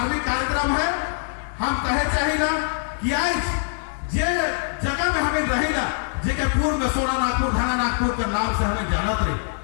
कार्यक्रम है, हम कहे चाहिए कि आज जे जगह में हमें रहेगा जेके पूर्व में सोना नागपुर धाना नागपुर के नाम से हमें जानत रही।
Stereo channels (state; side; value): silent; right; 63 dB below the other